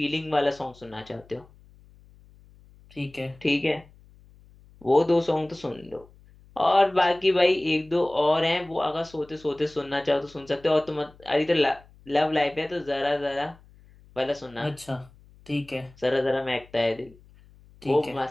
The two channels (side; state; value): left; noise; hum, 26 dB below the sound